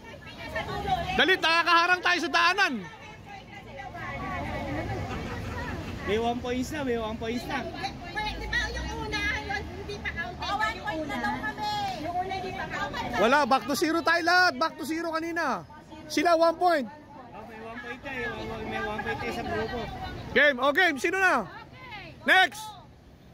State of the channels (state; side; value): identical; both; correlation 1.00